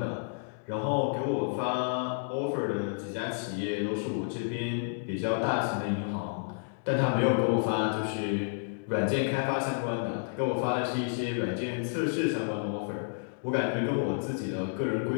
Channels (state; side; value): silent; right; digital silence